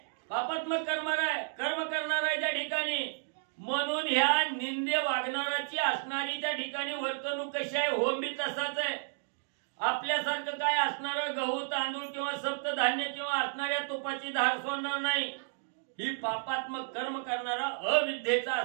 पापात्मक कर्म करणार आहे त्या ठिकाणी. म्हणून ह्या निंदे वागणाराची असणारी त्या ठिकाणी वर्तणूक कशी आहे, होम बी तसाच आहे. आपल्यासारखं काय असणारं गहू तांदूळ किंवा सप्तधान्य किंवा असणाऱ्या तुपाची धार सोडणार नाही. ही पापात्मक कर्म करणारा अविद्येचा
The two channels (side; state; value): left; silent; digital silence